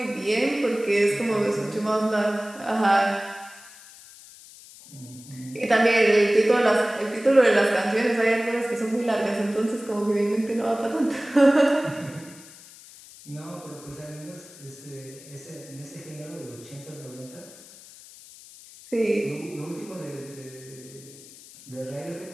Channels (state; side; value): noise; left; hiss, 20 dB below the sound